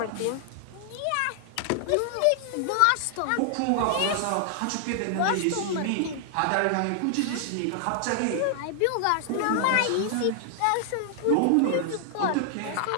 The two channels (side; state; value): both; different; correlation 0.00